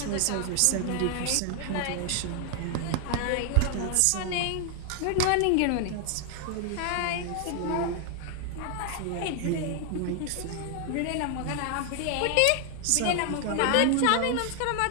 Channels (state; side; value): different; both; correlation 0.00